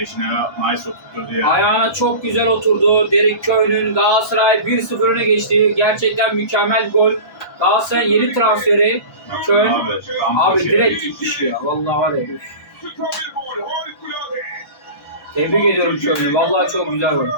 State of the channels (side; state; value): right; late; 1.3 ms